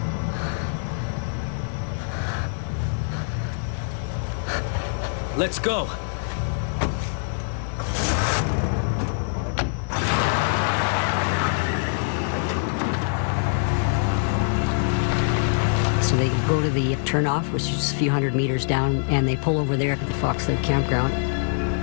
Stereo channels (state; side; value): silent; right; digital silence